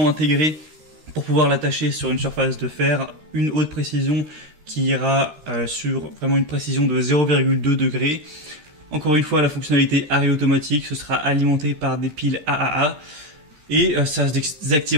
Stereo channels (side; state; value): left; late; 13 ms